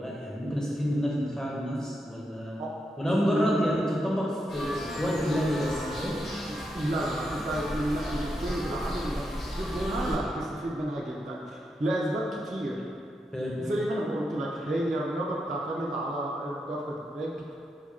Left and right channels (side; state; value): both; normal; correlation 0.84